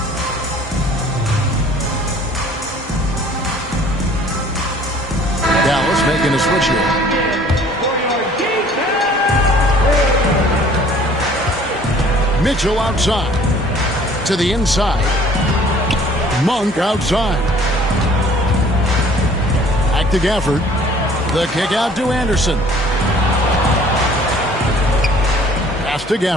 Dallas making a switch here. Mitchell outside. To the inside. Monk outside. Back to Gafford. The kick out to Anderson. Pass to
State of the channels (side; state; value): both; normal; correlation 0.53